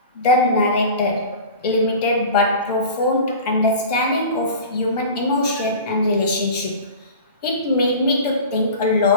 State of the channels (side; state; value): both; inverted; correlation -0.37